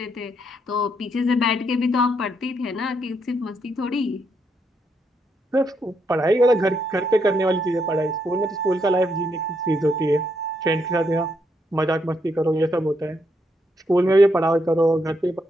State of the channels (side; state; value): both; normal; correlation 0.77